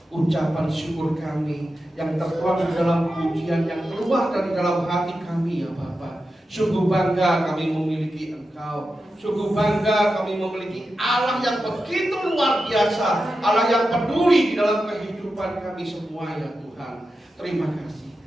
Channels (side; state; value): both; normal; correlation 0.91